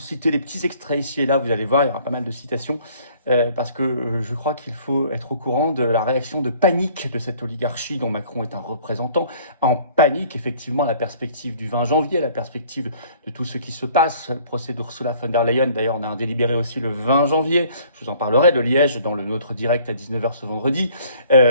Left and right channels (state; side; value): inverted; both; correlation -0.55